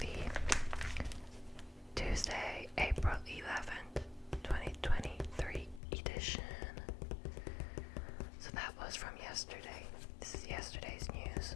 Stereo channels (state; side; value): drops out; right; at 5.8 s